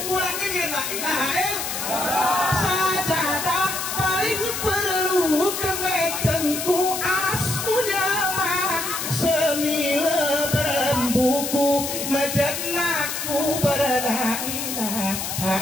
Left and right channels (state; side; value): noise; left; hiss, 4 dB below the sound